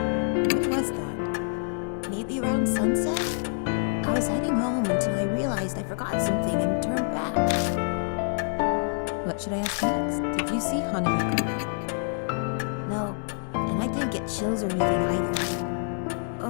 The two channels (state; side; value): silent; right; digital silence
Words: When was that? Maybe around sunset? I was heading home until I realized I forgot something and turned back. What should I ask next? Did you see Hanahiko? No, and I didn't get chills or anything either.